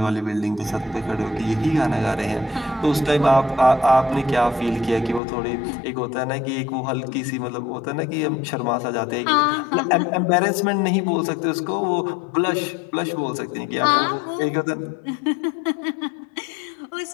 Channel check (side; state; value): right; drops out; at 5.2 s